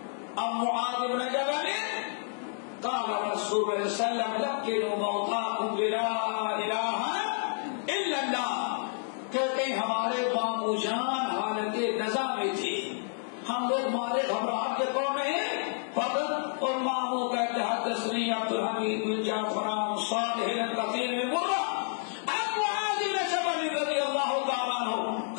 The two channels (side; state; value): right; silent; digital silence